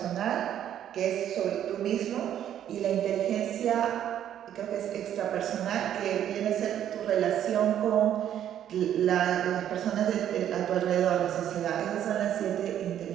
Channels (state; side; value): quieter; left; 10.5 dB